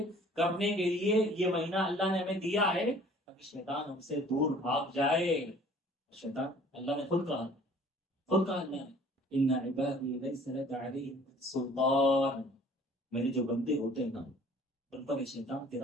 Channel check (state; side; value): normal; both; correlation 0.52